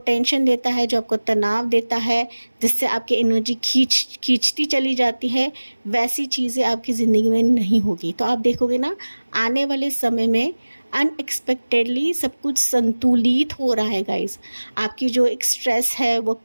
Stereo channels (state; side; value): inverted; both; correlation -1.00